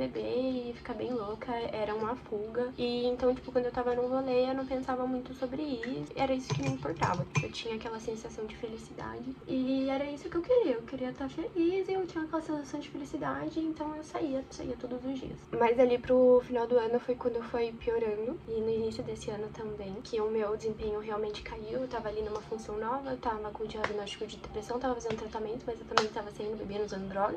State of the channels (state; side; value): identical; both; correlation 1.00